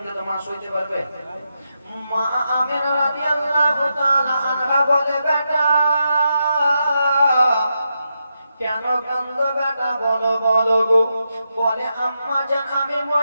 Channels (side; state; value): both; inverted; correlation -0.85